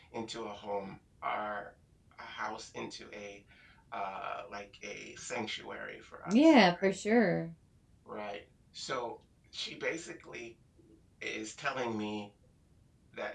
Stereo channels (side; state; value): both; identical; correlation 1.00